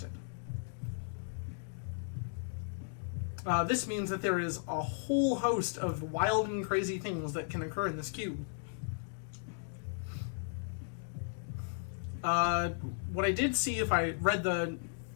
This means that there is a whole host of wild and crazy things that can occur in this cube. What I did see, if I read the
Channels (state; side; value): silent; right; digital silence